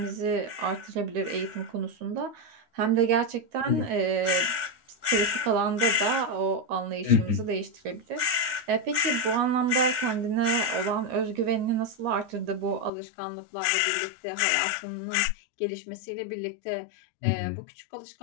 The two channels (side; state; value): right; drops out; at 12.9 s